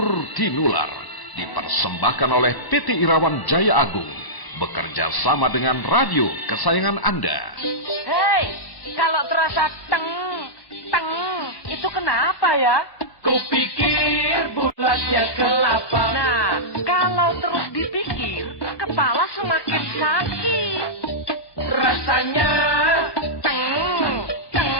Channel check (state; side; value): late; right; 1.1 ms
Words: Tinular, dipersembahkan oleh PT Irawan Jaya Agung, bekerja sama dengan radio kesayangan Anda. Hei, kalau terasa teng, itu kenapa ya? Kupikir bulatnya kelapa. Nah, kalau terus dipikir, kepala semakin sakit. Rasanya